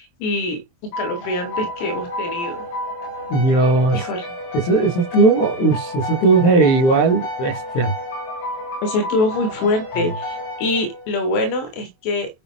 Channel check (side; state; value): right; late; 23 ms